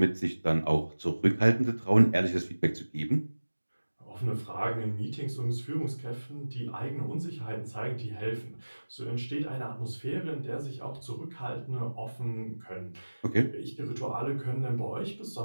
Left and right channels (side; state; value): both; inverted; correlation -1.00